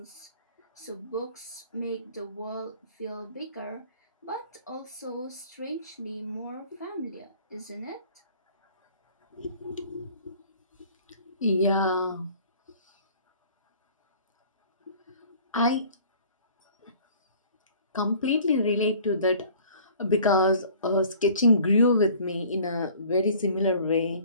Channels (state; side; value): inverted; both; correlation -0.51